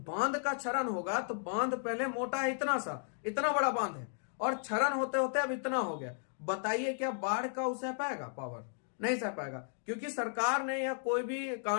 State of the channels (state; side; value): silent; right; digital silence